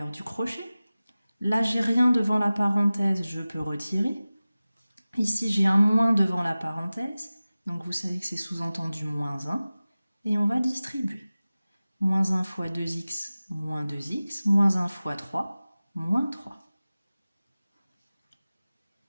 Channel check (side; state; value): both; inverted; correlation -0.96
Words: du crochet. Là, j'ai rien devant la parenthèse, je peux retirer. Ici, j'ai un moins devant la parenthèse, donc vous savez que c'est sous-entendu moins 1. Et on va distribuer. Moins 1 fois 2x, moins 2x, moins 1 fois 3, moins 3.